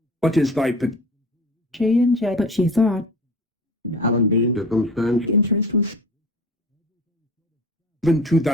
What is thy she and Jay. But she thought. Alan Dean. Circumstance. Interest was given to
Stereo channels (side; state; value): both; normal; correlation 0.38